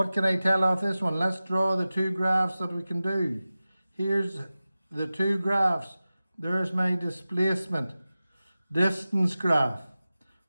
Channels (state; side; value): inverted; both; correlation -0.96